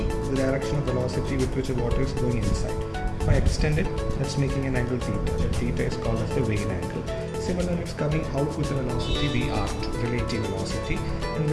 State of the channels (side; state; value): both; identical; correlation 1.00